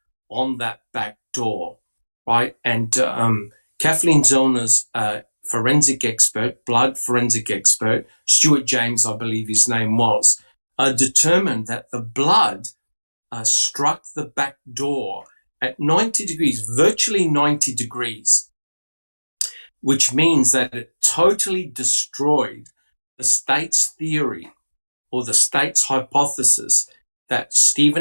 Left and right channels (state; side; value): inverted; both; correlation -1.00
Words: on that back door, right? And Kathleen Zellner's forensic expert, blood forensic expert, Stuart James, I believe his name was, determined that the blood struck the back door at 90 degrees, virtually 90 degrees, which means that it totally destroyed the state's theory or the state's hypothesis that